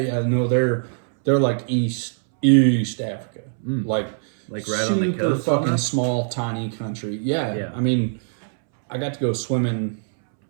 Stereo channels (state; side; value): silent; left; 64 dB below the other